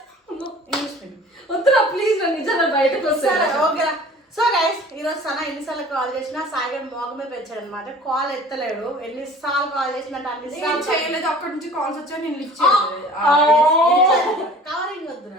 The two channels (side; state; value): both; normal; correlation 0.46